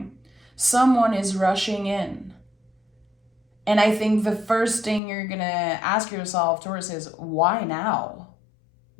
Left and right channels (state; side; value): drops out; right; at 5.0 s